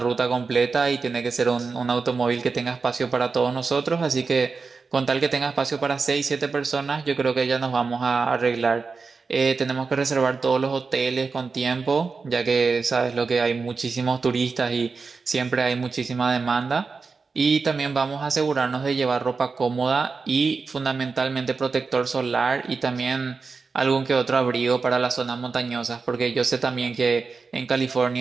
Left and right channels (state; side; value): quieter; left; 4.6 dB